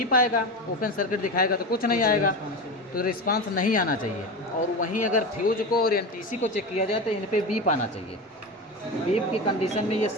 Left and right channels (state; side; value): normal; both; correlation 0.23